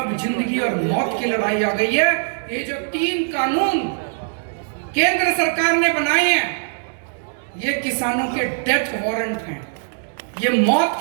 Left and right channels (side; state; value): left; silent; digital silence